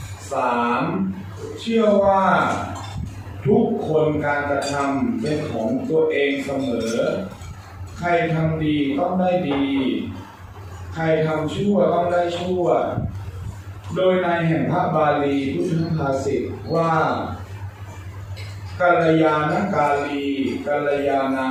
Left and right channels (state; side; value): identical; both; correlation 1.00